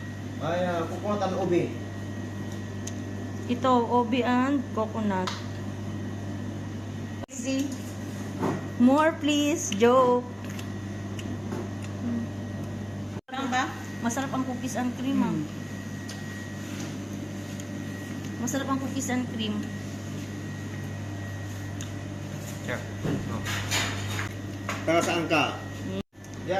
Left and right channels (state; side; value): identical; both; correlation 1.00